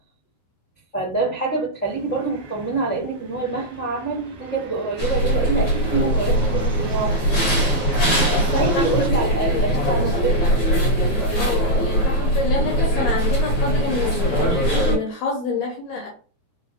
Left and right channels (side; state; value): right; late; 9.1 ms